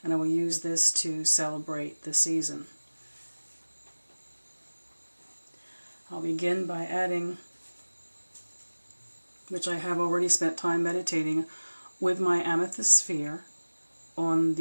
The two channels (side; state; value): both; inverted; correlation -1.00